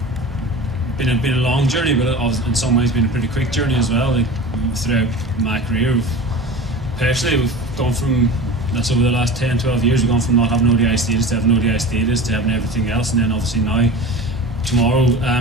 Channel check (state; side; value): normal; both; correlation 0.34